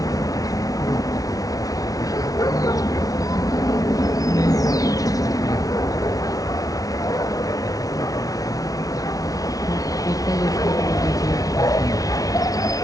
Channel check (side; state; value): right; late; 0.18 ms